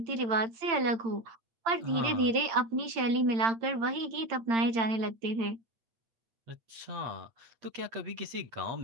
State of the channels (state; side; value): late; left; 8.8 ms